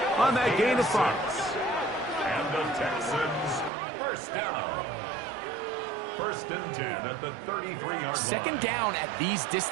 on that gain of 5. And the Texans, 1st down. 1st and 10 at the 33-yard line. 2nd down at these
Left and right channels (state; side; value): drops out; left; at 3.7 s